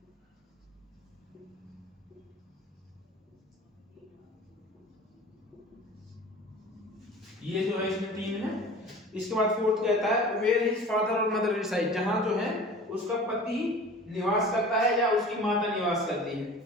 ये जो है इसमें 3 है। इसके बाद फोर्थ कहता है वेयर हिज फादर और मदर रिसाइड, जहां जो है उसका पति निवास करता है या उसकी माता निवास करती है।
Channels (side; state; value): both; normal; correlation 0.41